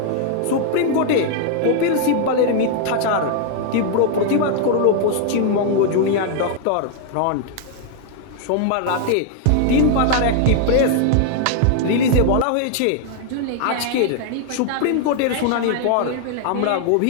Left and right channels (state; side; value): different; both; correlation 0.00